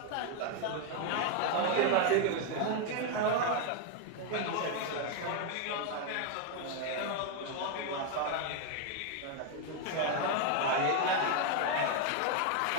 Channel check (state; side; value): different; both; correlation 0.01